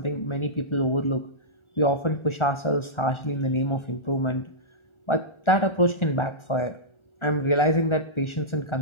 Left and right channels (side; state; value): right; late; 1.4 ms